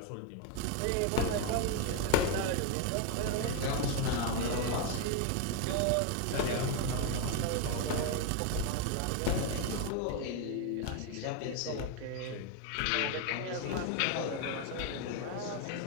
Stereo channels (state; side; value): different; both; correlation 0.01